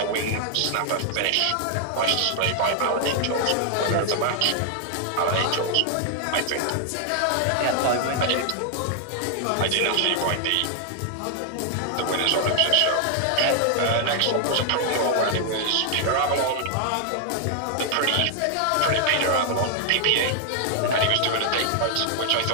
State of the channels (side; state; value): both; different; correlation 0.00